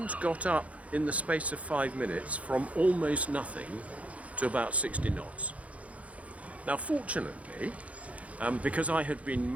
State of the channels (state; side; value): late; left; 0.066 ms